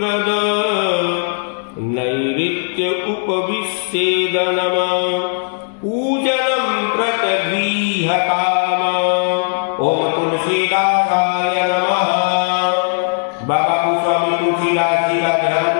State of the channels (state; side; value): silent; right; 68 dB below the other